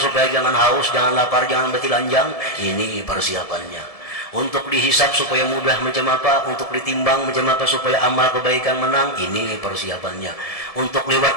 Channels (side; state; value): right; late; 1.7 ms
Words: supaya jangan haus, jangan lapar, jangan betilanjang, ini persiapannya. Untuk dihisab supaya mudah macam apa, untuk ditimbang macam apa supaya amal kebaikan menang, ini persiapannya. Untuk